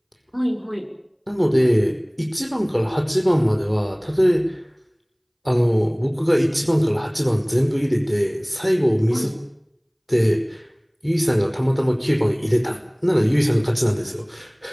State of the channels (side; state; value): both; identical; correlation 1.00